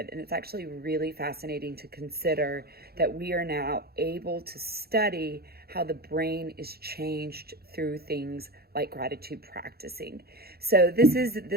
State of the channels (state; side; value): late; left; 0.45 ms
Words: And it's actually really fascinating to consider that we are now able to study how the brain is changed through things like gratitude practicing. So this